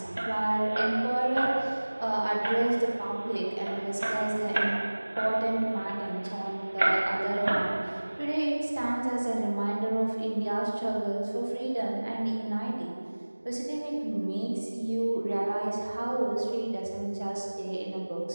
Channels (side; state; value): both; inverted; correlation -1.00